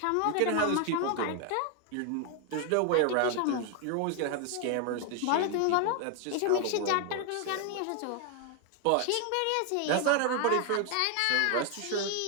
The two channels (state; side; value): different; both; correlation 0.01